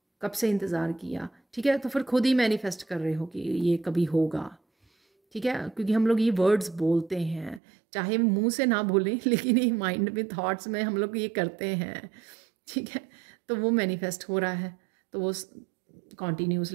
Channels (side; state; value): left; drops out; at 7.6 s